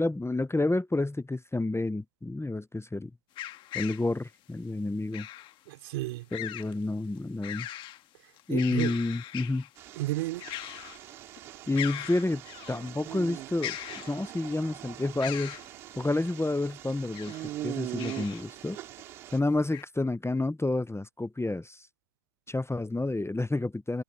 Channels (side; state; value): both; normal; correlation 0.84